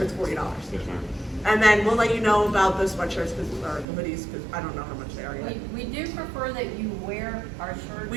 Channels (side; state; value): left; drops out; at 3.9 s